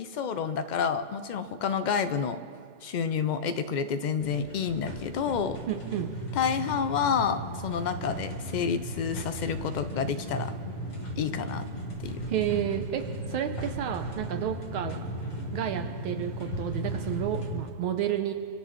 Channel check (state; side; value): late; right; 2.1 ms